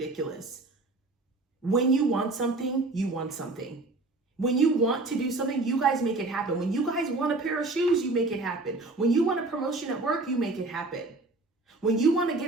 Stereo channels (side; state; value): left; quieter; 3.2 dB